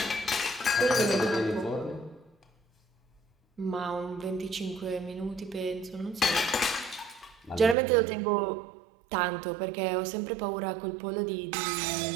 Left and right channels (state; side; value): drops out; left; at 7.8 s